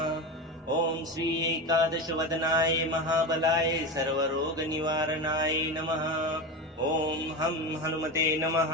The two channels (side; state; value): both; normal; correlation 0.21